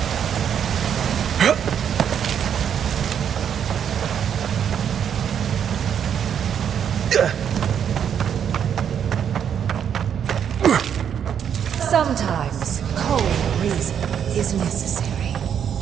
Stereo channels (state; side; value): quieter; left; 8.5 dB